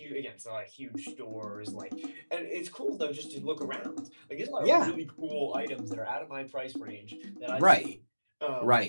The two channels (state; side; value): inverted; both; correlation -1.00